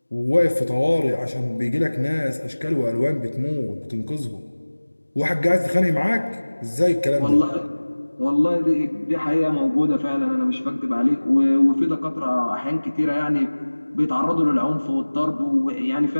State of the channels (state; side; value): inverted; both; correlation -1.00